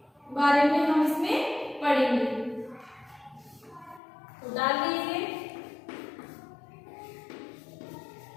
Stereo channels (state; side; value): drops out; right; at 4.0 s